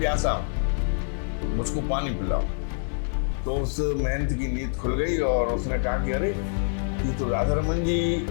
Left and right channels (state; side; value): silent; right; 58 dB below the other